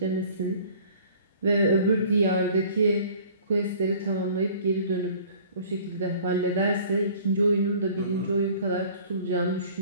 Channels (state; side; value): inverted; both; correlation -0.50